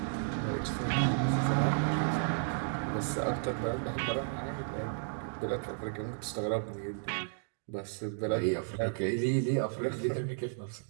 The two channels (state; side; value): silent; left; digital silence